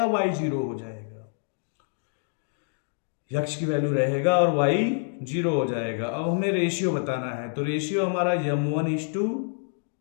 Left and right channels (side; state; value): right; silent; digital silence